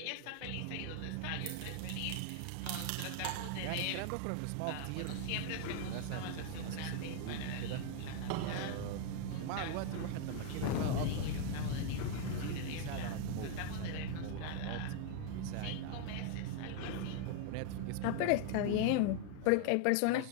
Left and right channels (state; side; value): different; both; correlation 0.00